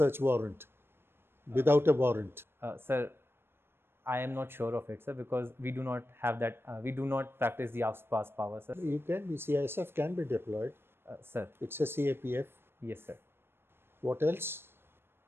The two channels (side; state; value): left; late; 0.11 ms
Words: warrant, without a warrant. Sir, I am not sure of it, sir, because we do not have that. We do not practice the AFSPA's power, sir. You can be CISF can be deployed. Sir, It's a CAPF. yes, sir. What else?